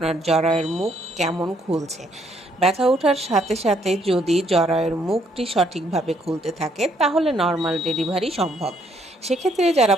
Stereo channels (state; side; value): normal; both; correlation 0.69